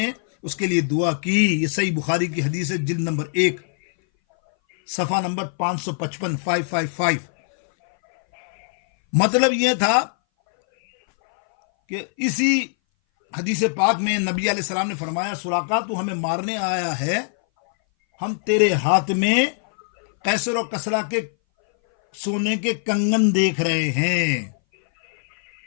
اس کے لیے دعا کی. یہ صحیح بخاری کی حدیث ہے, جلد نمبر 1 صفحہ نمبر 555 555. مطلب یہ تھا کہ اسی حدیث پاک میں نبی علیہ السلام نے فرمایا سراقہ تو ہمیں مارنے آیا ہے, ہم تیرے ہاتھ میں قیصر و کسریٰ کے سونے کے کنگن دیکھ رہے ہیں.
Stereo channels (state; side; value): silent; right; 60 dB below the other